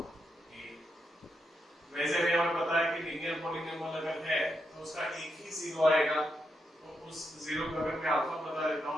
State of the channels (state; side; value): normal; both; correlation 0.83